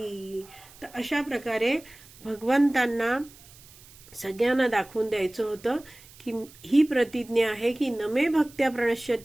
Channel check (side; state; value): right; noise; hiss, 22 dB below the sound